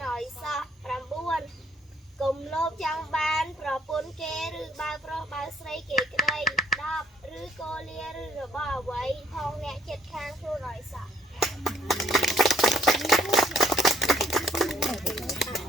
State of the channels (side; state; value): both; normal; correlation 0.64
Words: ឲ្យសោះ9កុំលោភចង់បានប្រពន្ធគេឬបើប្រុសបើស្រីគេក្តី10ឬកូលាឬរបស់អ្វីផងអ្នកចិត្តខាងខ្លួនឲ្យសោះ